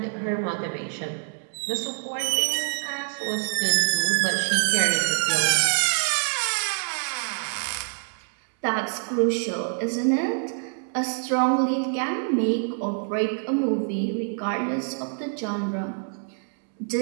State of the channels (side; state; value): left; silent; 59 dB below the other